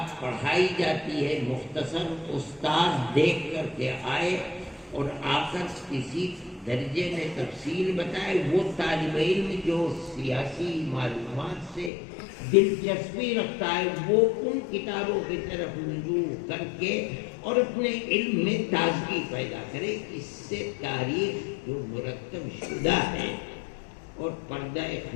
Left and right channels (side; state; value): right; drops out; at 11.9 s